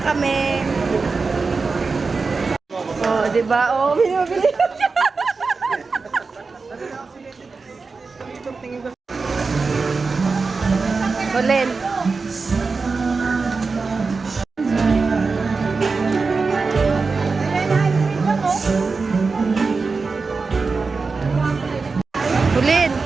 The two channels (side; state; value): left; quieter; 4.4 dB